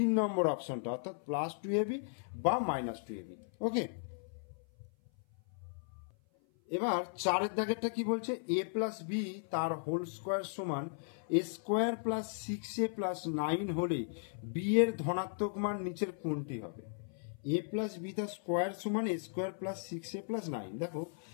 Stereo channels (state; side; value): silent; right; 54 dB below the other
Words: নম্বর অপশনটা, অর্থাৎ প্লাস টু এবি বা মাইনাস টু এবি। ওকে, এবার 4 দাগেরটা কি বলছে, এ প্লাস বি তার হোল স্কোয়ার সমান এ স্কোয়ার প্লাস 6a প্লাস 9 হলে বি এর ধনাত্মক মান নিচের কোনটি হবে। এ প্লাস বি তার স্কোয়ার সমান এ স্কোয়ার প্লাস 6a প্লাস 9। দেখো